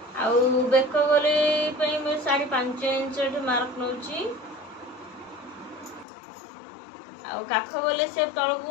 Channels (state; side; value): drops out; right; at 6.1 s